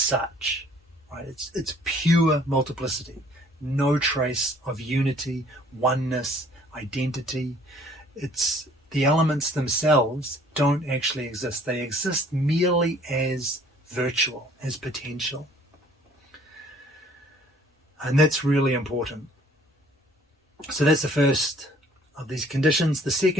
right? It's pure multiplicity. No trace of unity, oneness, identity. It's the elements themselves don't actually exist. They exist merely as virtual, as potential. And that's really important. So that's the first of these conditions. The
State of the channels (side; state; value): both; normal; correlation 0.57